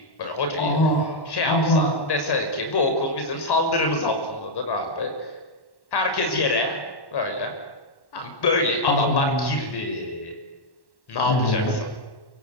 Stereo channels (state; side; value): late; right; 1.1 ms